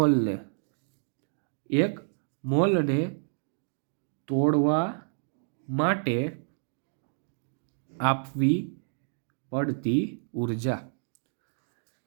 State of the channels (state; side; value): silent; left; digital silence